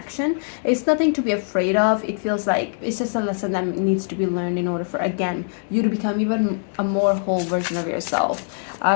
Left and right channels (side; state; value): right; silent; digital silence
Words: It's nothing to be afraid of. It feels like it's just a lesson that needs to be learned in order for, again, you to become even a more whole version of yourself.